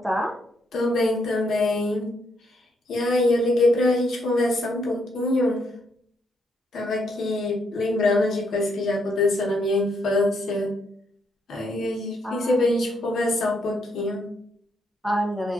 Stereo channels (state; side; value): normal; both; correlation 0.75